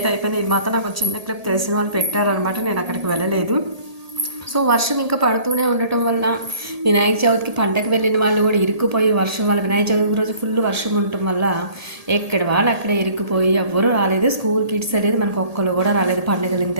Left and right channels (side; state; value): left; late; 1.8 ms